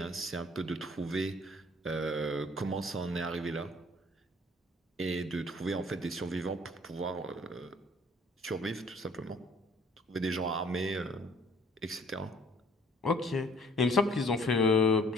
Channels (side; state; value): both; normal; correlation 0.56